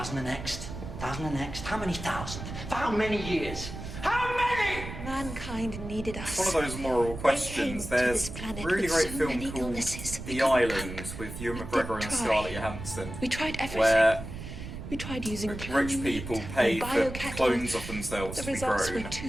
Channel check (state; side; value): noise; right; rumble, 9 dB below the sound